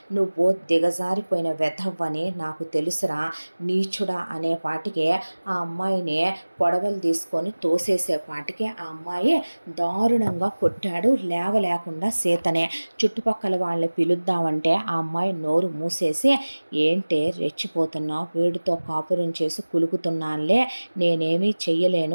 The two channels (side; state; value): both; inverted; correlation -1.00